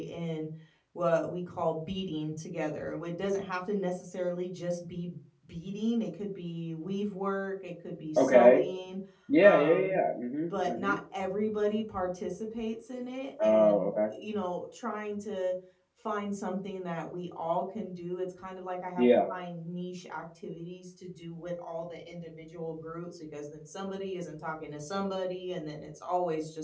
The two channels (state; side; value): identical; both; correlation 1.00